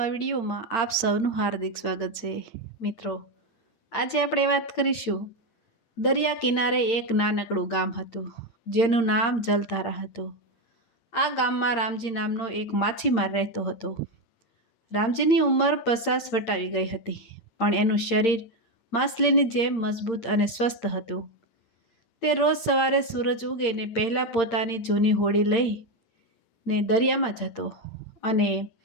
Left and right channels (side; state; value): right; late; 8.7 ms